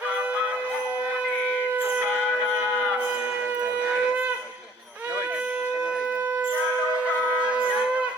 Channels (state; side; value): normal; both; correlation 0.57